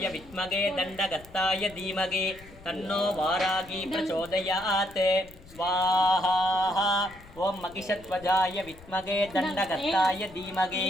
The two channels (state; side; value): noise; left; rumble, 21 dB below the sound